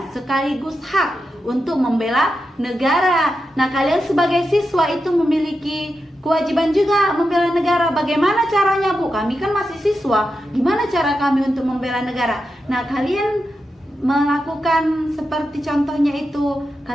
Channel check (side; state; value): both; normal; correlation 0.88